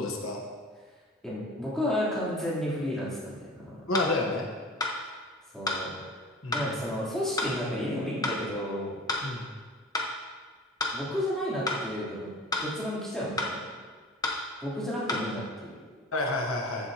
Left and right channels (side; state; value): both; normal; correlation 0.40